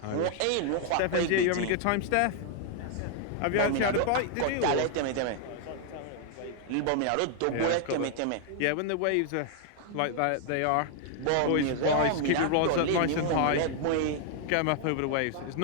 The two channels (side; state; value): both; different; correlation 0.00